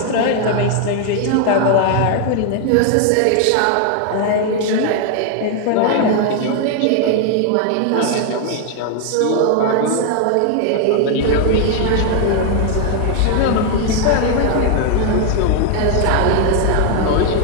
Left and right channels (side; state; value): both; different; correlation 0.00